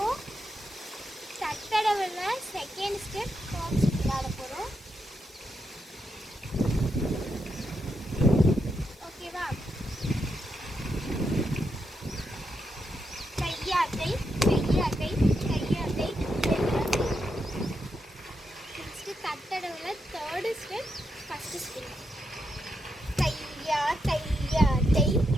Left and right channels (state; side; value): normal; both; correlation 0.83